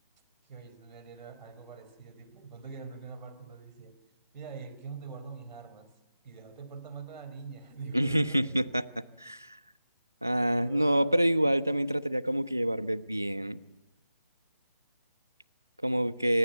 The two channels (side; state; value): both; inverted; correlation -0.95